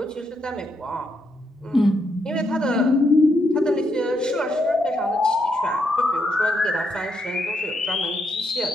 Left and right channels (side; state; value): both; normal; correlation 0.78